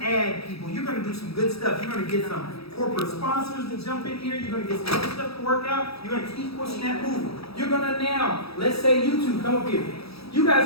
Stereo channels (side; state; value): right; late; 0.77 ms